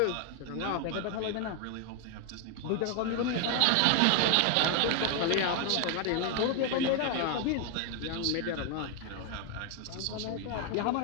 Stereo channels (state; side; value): different; both; correlation 0.01